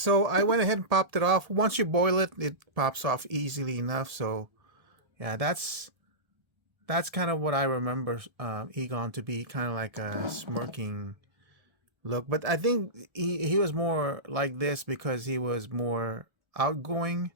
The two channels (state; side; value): late; left; 1.3 ms